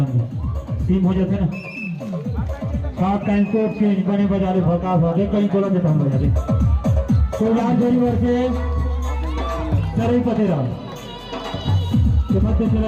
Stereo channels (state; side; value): identical; both; correlation 1.00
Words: टीम हो जाते ना। सात टाइम को चेंज बने बजा रहे भका भागे कहीं बोला देता हम बजा रहे। तो यार जोरी वर्ष सरई पतेरा के मध्य